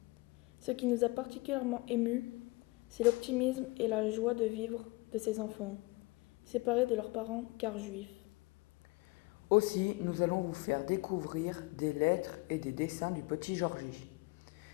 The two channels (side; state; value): right; quieter; 24.3 dB